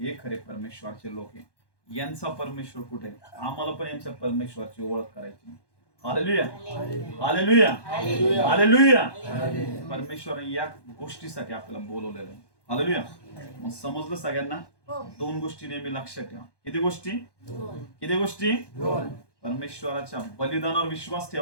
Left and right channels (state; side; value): late; right; 1.1 ms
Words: खरे परमेश्वराचे लोक आहे. यांचा परमेश्वर कुठे, आम्हाला पण यांच्या परमेश्वराची ओळख करायची. हालेलुया. हालेलुया. हालेलुया. परमेश्वराने या गोष्टीसाठी आपल्याला बोलवलेलं आहे. हालेलुया. मग समजलं सगळ्यांना. 2 गोष्टी नेहमी लक्षात ठेवा. किती गोष्टी, किती गोष्टी. परमेश्वराच्या बलिदानावर विश्वास